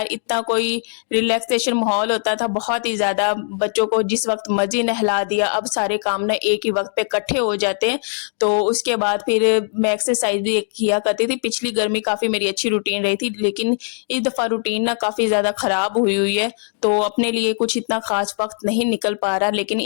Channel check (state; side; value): silent; right; 66 dB below the other